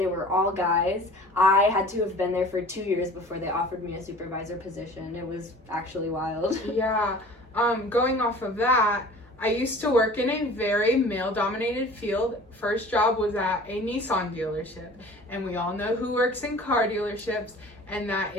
were all guys. I had to have been there for 2 years before they offered me a supervisor position. It was actually wild. Yeah. Going off of that, I used to work in a very male-dominated field. First job was at a Nissan dealership, and we all know who works in car dealerships, and that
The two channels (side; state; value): both; normal; correlation 0.44